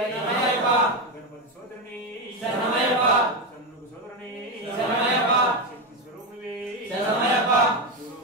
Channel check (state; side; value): normal; both; correlation 0.11